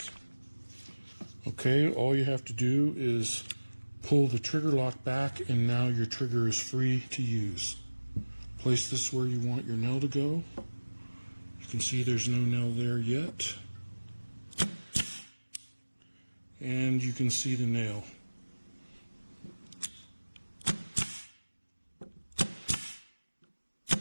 Okay, all you have to do is pull the trigger lock back, and now your trigger is free to use. Place this where you want your nail to go. You can see there's no nail there yet. And you can see the nail.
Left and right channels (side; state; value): both; inverted; correlation -1.00